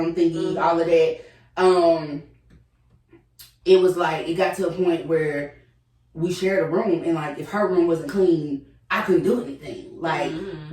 thingy, all of that, it was like, it got to a point where we shared a room, and, like, if her room wasn't clean, I couldn't do anything. Like,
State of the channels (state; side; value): identical; both; correlation 1.00